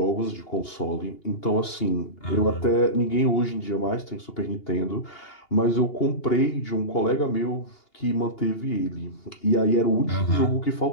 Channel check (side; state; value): right; late; 2.8 ms